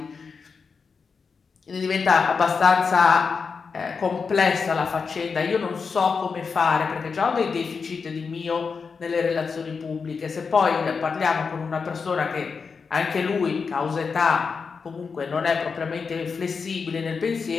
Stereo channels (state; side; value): quieter; right; 5.3 dB